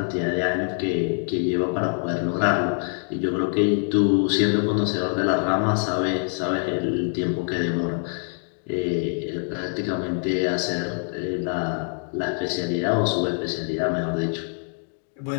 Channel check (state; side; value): silent; right; 62 dB below the other